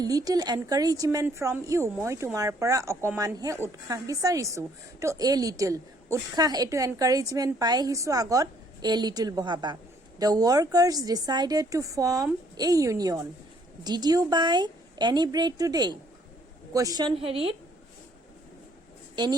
little encouragement from you. মই তোমাৰ পৰা অকমানহে উৎসাহ বিচাৰিছো, তো এ লিটল. উৎসাহ এইটো এনকাৰেজমেণ্ট পাই আহিছো, আগত এ লিটল বহাবা. The workers decided to form a union. Did you buy any bread today? Question হেৰিত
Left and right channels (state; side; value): normal; both; correlation 0.64